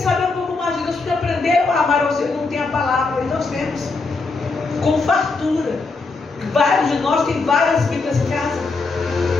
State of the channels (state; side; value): quieter; right; 3.9 dB